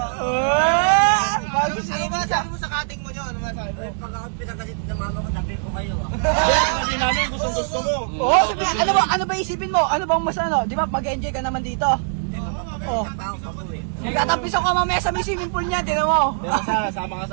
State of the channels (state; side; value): silent; left; digital silence